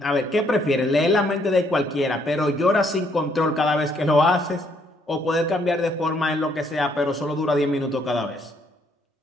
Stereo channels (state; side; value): normal; both; correlation 0.69